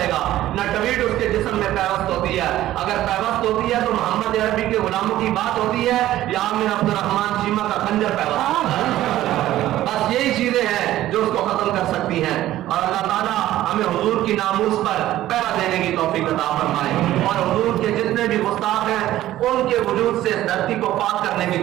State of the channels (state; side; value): quieter; left; 14.2 dB